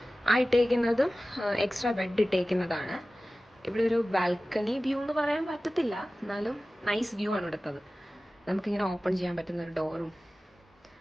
ആ ഇട്ടേക്കുന്നതും എക്സ്ട്രാ ബെഡ് ഇട്ടേക്കുന്നതാണ്. ഇവിടെ ഒരു ബാൽക്കണി വ്യൂ എന്ന് പറയാൻ പറ്റത്തില്ല, എന്നാലും നൈസ് വ്യൂ ആണ് ഇവിടുത്തത്. നമുക്കിങ്ങനെ ഓപ്പൺ ചെയ്യാൻ പറ്റുന്ന ഒരു ഡോറും.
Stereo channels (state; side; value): normal; both; correlation 0.96